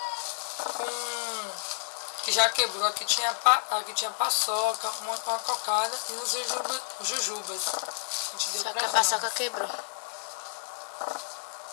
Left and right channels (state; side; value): silent; right; digital silence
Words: que já quebrou. Aqui tinha paçoca, uma cocada e uns jujubas. A gente deu. Só que a paçoca quebrou.